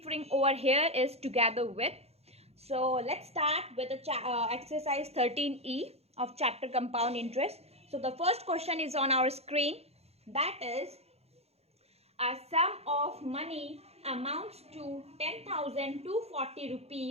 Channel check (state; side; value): late; left; 0.30 ms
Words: over here is Together With. So let's start with the exercise 13E of chapter compound interest. So the first question is on our screen, that is a sum of money amounts to 10,240